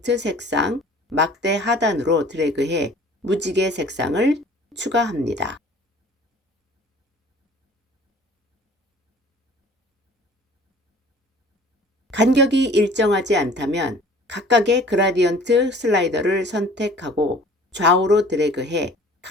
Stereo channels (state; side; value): normal; both; correlation 0.49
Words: 색상 막대 하단으로 드래그해 무지개 색상을 추가합니다. 간격이 일정하지 않다면 각각의 그라디언트 슬라이더를 선택하고 좌우로 드래그해